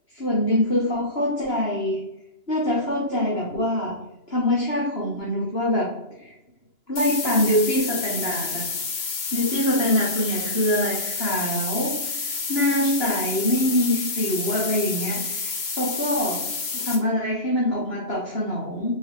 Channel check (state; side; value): late; right; 3.0 ms